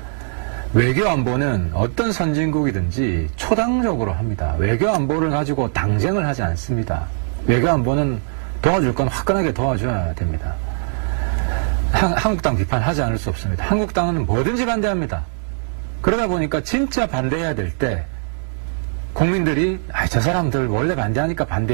외교 안보는 어떤 선진국이든지 초당적으로 합니다. 외교 안보를 가지고 당쟁을 하지 않습니다. 외교 안보는 도와줄 건 화끈하게 도와줘야 됩니다. 한국당 비판하지 않을 수 없습니다. 한국당은 뭐든지 반대합니다. 그러다 보니까 진짜 반대해야 될 때 국민들이 저 사람들 원래 반대하니까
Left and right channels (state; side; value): silent; left; 65 dB below the other